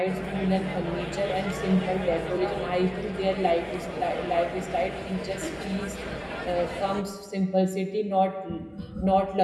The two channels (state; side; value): identical; both; correlation 1.00